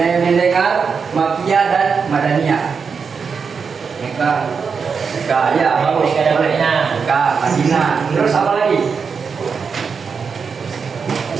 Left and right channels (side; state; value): left; quieter; 5.7 dB